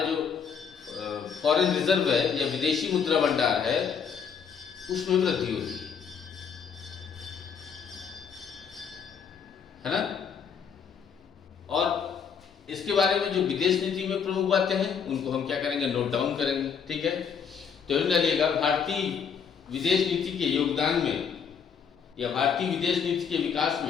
जो फॉरेन रिजर्व है या विदेशी मुद्रा भंडार है उसमें वृद्धि होती है ना। और इसके बारे में जो विदेश नीति में प्रमुख बातें हैं उनको हम क्या करेंगे, नोट डाउन करेंगे, ठीक है। तो डालिएगा भारतीय विदेश नीति के योगदान में या भारतीय विदेश नीति के विकास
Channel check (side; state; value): right; quieter; 6.7 dB